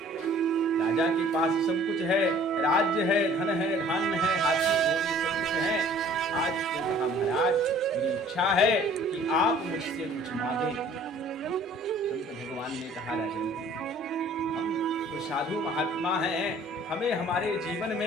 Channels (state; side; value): normal; both; correlation 0.53